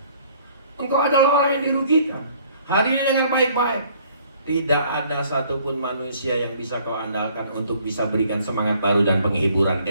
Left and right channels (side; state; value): both; inverted; correlation -0.59